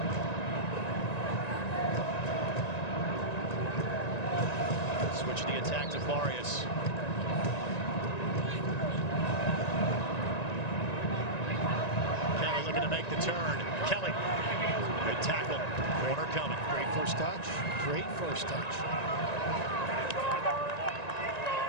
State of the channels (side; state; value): right; late; 1.9 ms